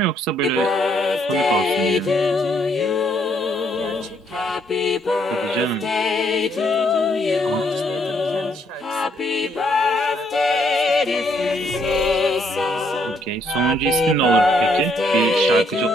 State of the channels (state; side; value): normal; both; correlation 0.70